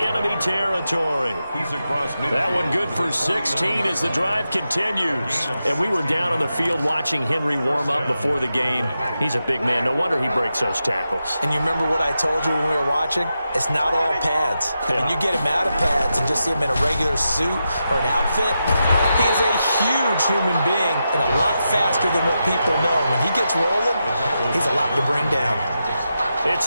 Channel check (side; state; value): both; inverted; correlation -0.88